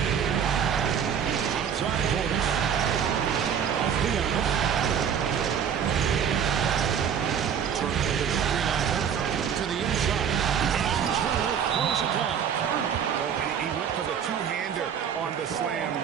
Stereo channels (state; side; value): quieter; left; 7.9 dB